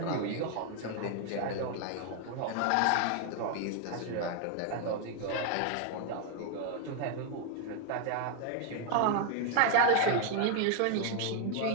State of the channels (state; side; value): different; both; correlation 0.00